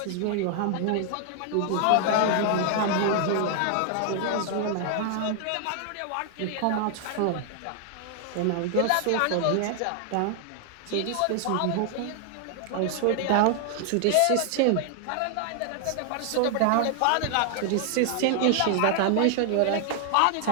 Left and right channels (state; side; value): different; both; correlation 0.00